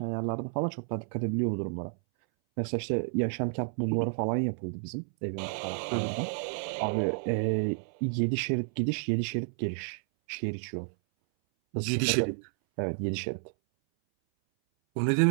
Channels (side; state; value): left; silent; 57 dB below the other